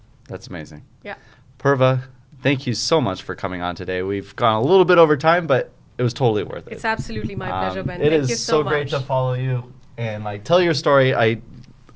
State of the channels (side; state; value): both; identical; correlation 1.00